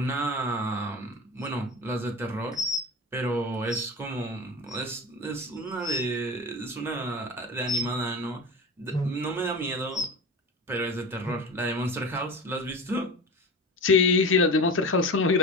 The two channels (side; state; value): both; normal; correlation 0.29